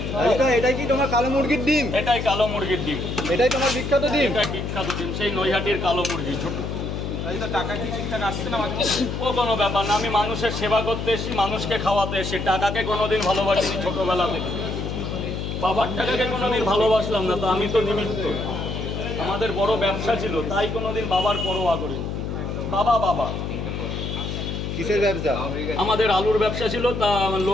এটাই কি তোমার কালো মুরগির ডিম? এটাই কালো মুরগির ডিম, এটাই তোমার বিখ্যাত ডিম? এটা বিখ্যাত ডিম, সেই নৈহাটির কালো মুরগি। টাকা কি ঠিকঠাক আসছে না? ও কোনো ব্যাপার না, আমি মানুষের সেবা করতে এসেছি, মানুষকে খাওয়াতে এসেছি। টাকাকে কোনোদিন ভালোবাসিনি ছোটবেলা থেকে, বাবার টাকাকে কোনোদিন ভালোবাসলাম না, তো আমি তো নিমিত্ত। আমাদের বড় ব্যবসা ছিল, তাই কোনোদিন বাবার পরোয়া করিনি। বাবা কিসের ব্যবসা? আমাদের আলুর ব্যবসা ছিল, তা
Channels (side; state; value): left; noise; hum, 4 dB below the sound